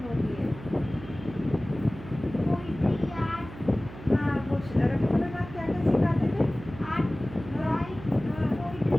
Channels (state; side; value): noise; right; hum, 14 dB below the sound